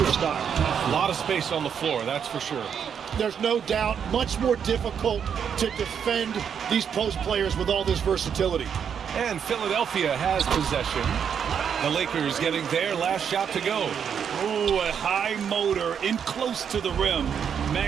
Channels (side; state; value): left; quieter; 7.7 dB